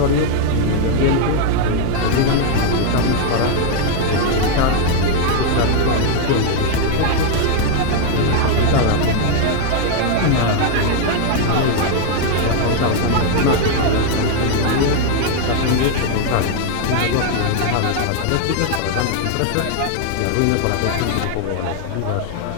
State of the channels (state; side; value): different; both; correlation 0.00